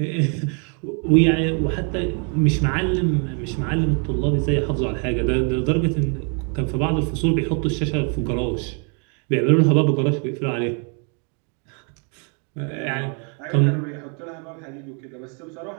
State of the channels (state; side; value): quieter; left; 38.7 dB